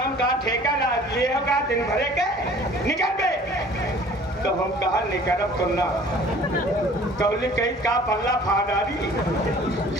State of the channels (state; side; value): normal; both; correlation 0.50